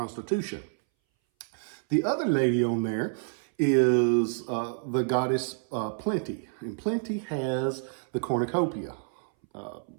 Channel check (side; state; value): left; silent; 59 dB below the other